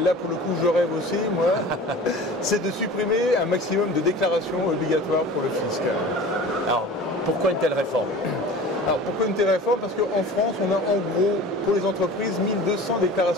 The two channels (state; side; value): normal; both; correlation 0.39